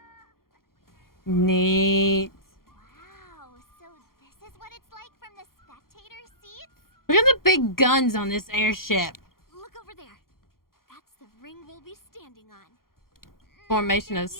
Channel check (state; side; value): late; right; 0.92 ms